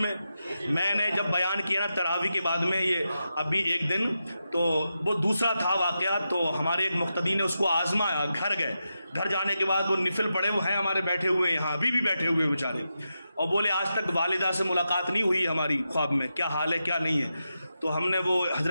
نے جب بیان کیا نا تراویح کے بعد میں، یہ ابھی ایک دن تو وہ دوسرا تھا واقعہ، تو ہمارے ایک مقتدی نے اس کو آزمایا، گھر گئے، گھر جانے کے بعد وہ نفل پڑے، وہ ہیں ہمارے بیٹھے ہوئے یہاں، ابھی بھی بیٹھے ہوئے بیچارے، اور بولے آج تک والدہ سے ملاقات نہیں ہوئی ہماری خواب میں، کیا حال ہے کیا نہیں ہے۔ تو ہم نے وہ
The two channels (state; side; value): inverted; both; correlation -0.88